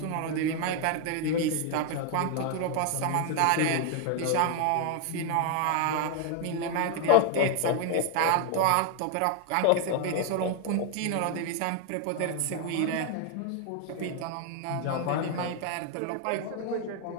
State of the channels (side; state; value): both; different; correlation 0.00